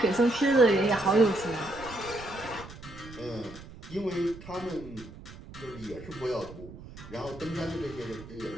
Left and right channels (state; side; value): noise; right; rumble, 16 dB below the sound